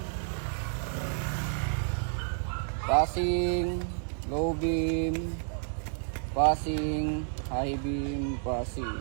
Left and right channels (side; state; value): left; silent; 58 dB below the other